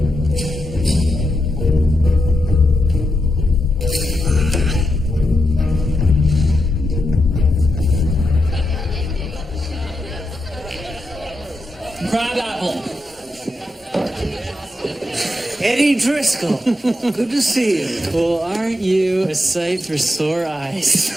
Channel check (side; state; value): both; normal; correlation 0.85